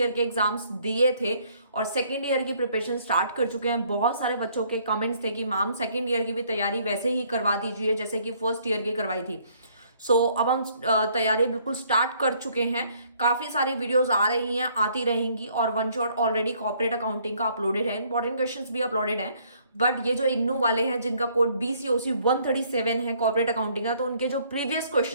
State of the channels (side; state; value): both; inverted; correlation -0.64